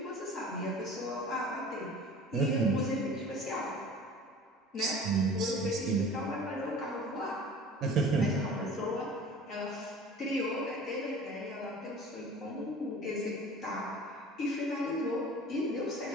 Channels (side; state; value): both; normal; correlation 0.43